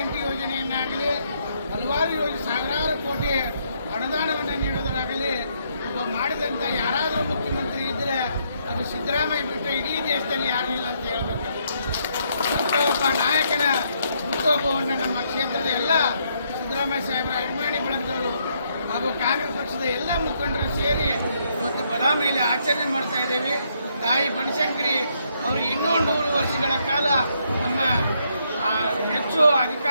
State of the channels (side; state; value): both; inverted; correlation -0.73